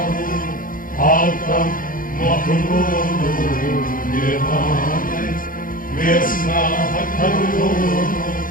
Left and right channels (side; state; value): right; late; 0.40 ms